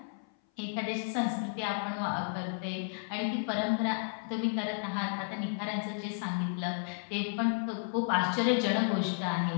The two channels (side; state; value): right; silent; 56 dB below the other